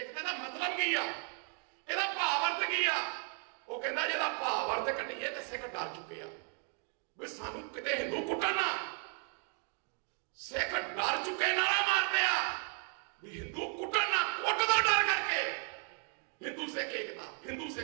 ਦਾ ਮਤਲਬ ਕੀ ਆ, ਇਹਦਾ ਭਾਵ ਅਰਥ ਕੀ ਆ? ਉਹ ਕਹਿੰਦਾ ਜਿਹਦਾ ਭਾਵ ਅਰਥ ਕੱਢੀਏ ਤੇ ਸਿੱਖ ਡਰ ਚੁੱਕੇ ਆ ਵੀ ਸਾਨੂੰ ਕਿਤੇ ਹਿੰਦੂ ਕੁੱਟਣ ਨਾ। ਸਿੱਖ ਡਰ ਚੁੱਕੇ ਨਾਰਾ ਮਾਰਦੇ ਆ ਵੀ ਹਿੰਦੂ ਕੁੱਟਣ ਨਾ, ਕੁੱਟ ਦਾ ਡਰ ਕਰਕੇ ਹਿੰਦੂ ਸਿੱਖ ਏਕਤਾ, ਹਿੰਦੂ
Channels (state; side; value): quieter; left; 36.9 dB